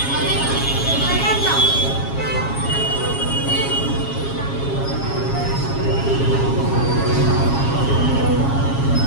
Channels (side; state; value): right; late; 7.3 ms